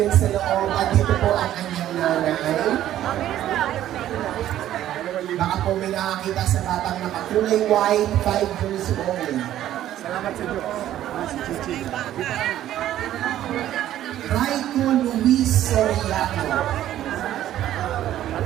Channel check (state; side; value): quieter; left; 12.5 dB